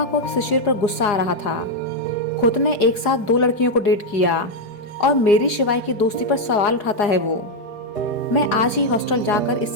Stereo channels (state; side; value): late; right; 4.9 ms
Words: को अब शिशिर पर गुस्सा आ रहा था। खुद ने एक साथ दो लड़कियों को डेट किया और मेरी शिवाय की दोस्ती पर सवाल उठाता है वो। मैं आज ही हॉस्टल जाकर